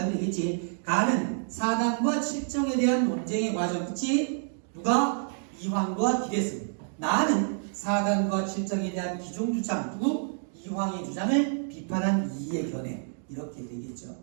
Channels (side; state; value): left; silent; digital silence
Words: 되겠지. 가는 사단과 칠정에 대한 논쟁의 과정. 그치? 누가? 이황과 기대승. 나는 사단과 칠정에 대한 기존 주장. 누구? 이황의 주장을 비판한 이의 견해. 이렇게 되겠죠.